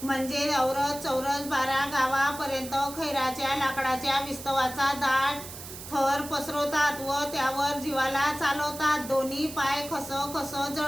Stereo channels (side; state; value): right; noise; hiss, 12 dB below the sound